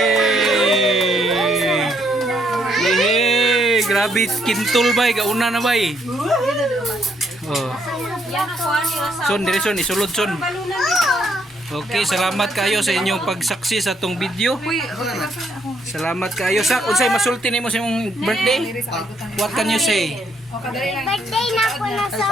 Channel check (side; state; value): both; normal; correlation 0.72